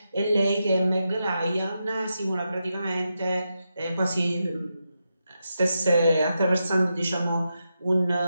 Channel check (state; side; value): inverted; both; correlation -0.86